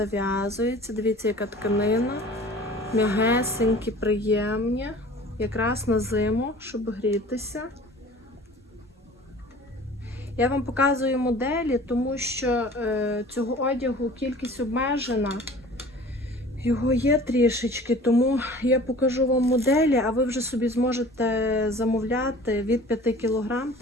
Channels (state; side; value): normal; both; correlation 0.45